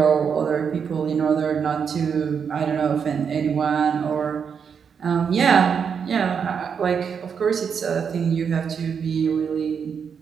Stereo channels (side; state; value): left; quieter; 6.7 dB